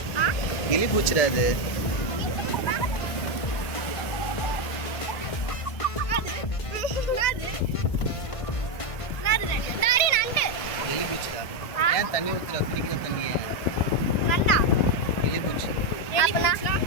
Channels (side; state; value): right; late; 1.5 ms